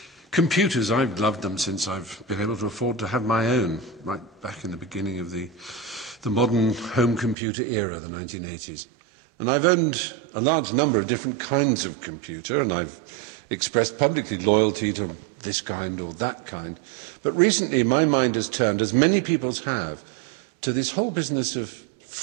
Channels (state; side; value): drops out; left; at 7.4 s